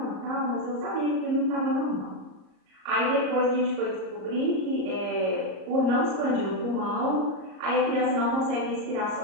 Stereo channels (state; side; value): late; left; 38 ms